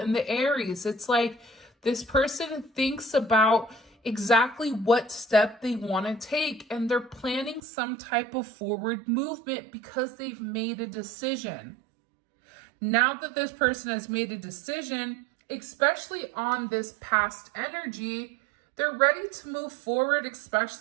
the Aries. It's like this person thinks about exactly what step they want to take, and they're planning some type of forward movement because they've made a decision. Now that this person has made a decision, especially on this past energy, They're ready to move forward,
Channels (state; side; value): drops out; left; at 7.6 s